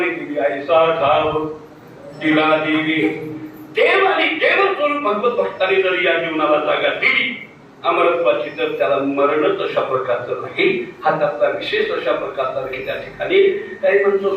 दिली. ऐसा ठाव तिला दिली देव आणि देव स्वरूप भगवत भक्तांनी जर या जीवनाला जागा दिली अमरत्वाची, तर त्याला मरणच अशा प्रकारचं नाही. हा त्याचा विशेष अशा प्रकारचा नाही. त्या ठिकाणी काही म्हणतो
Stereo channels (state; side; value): identical; both; correlation 1.00